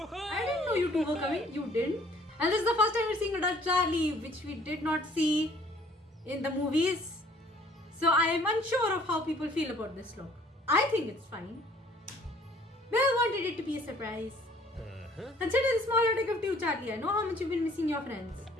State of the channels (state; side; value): normal; both; correlation 0.57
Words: I didn't know you two were coming. You didn't. And this is the first time we're seeing adult Charlie, which we did not see in the movies. So I am unsure of how people feel about this look. I think it's fine. Well, wanted it to be a surprise. Consider the smaller take of two, Charlie. I know how much you've been missing your friends.